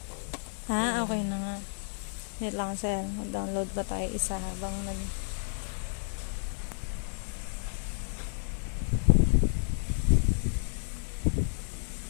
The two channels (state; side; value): silent; right; digital silence